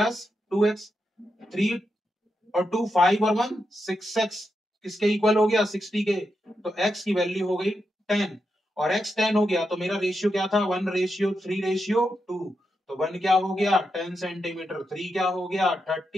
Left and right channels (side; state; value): both; normal; correlation 0.86